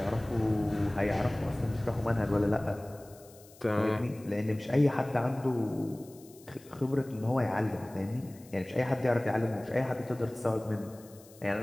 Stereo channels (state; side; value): noise; left; hiss, 24 dB below the sound